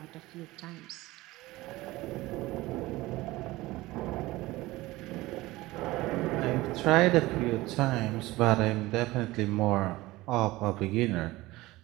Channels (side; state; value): left; quieter; 19.1 dB